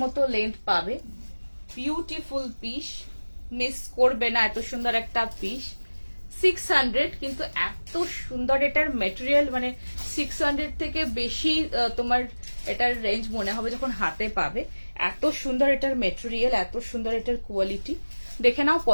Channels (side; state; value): both; inverted; correlation -1.00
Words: মতো লেন্থ পাবে। বিউটিফুল পিস, মিস করবে না, এত সুন্দর একটা পিস। 600, কিন্তু এত সুন্দর এটার মেটেরিয়াল, মানে 600 থেকে বেশি তোমার এটার রেঞ্জ মনে হবে যখন হাতে পাবে। এত সুন্দর এটার মেটেরিয়াল, এত সুন্দর এটার কোয়ালিটি। দেখে নাও,